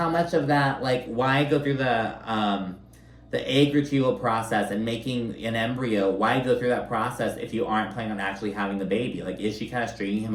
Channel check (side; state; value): both; identical; correlation 1.00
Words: much of that, like, why go through the egg retrieval process and making an embryo? Why go through that process if you aren't planning on actually having the baby? Like, is she kind of stringing